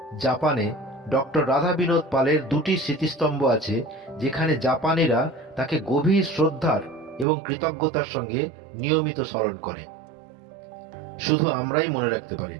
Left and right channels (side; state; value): left; drops out; at 7.2 s